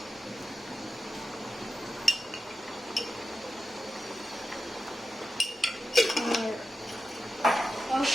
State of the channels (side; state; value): both; normal; correlation 0.90